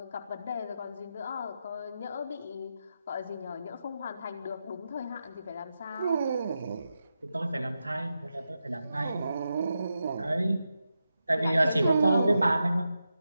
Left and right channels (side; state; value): both; inverted; correlation -0.88